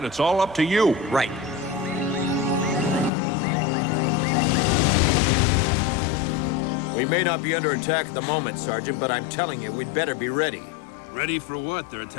it's all up to you. Right. We may not be under attack at the moment, Sergeant, but I'm telling you, we'd better be ready. Ready for what? They're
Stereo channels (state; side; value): drops out; right; at 3.1 s